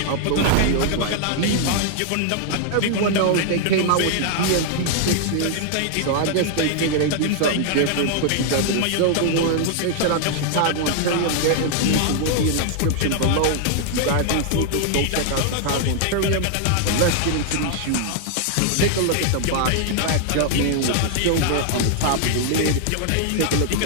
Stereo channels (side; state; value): both; different; correlation 0.00